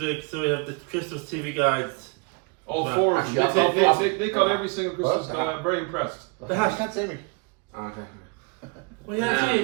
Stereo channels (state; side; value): quieter; left; 31.0 dB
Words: so we have the Christmas TV guides. All Well, four of them. actually, They got every single Christmas. Very impressed. The hat. You can't see me. Okay. Well, yeah,